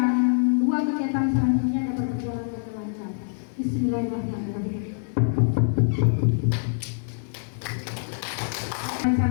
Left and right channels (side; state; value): right; silent; digital silence